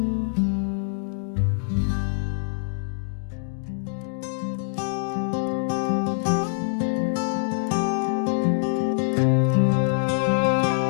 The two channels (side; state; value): right; silent; digital silence